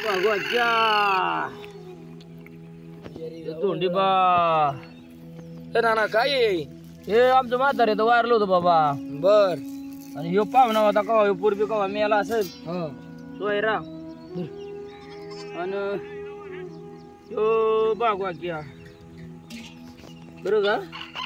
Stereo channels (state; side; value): identical; both; correlation 1.00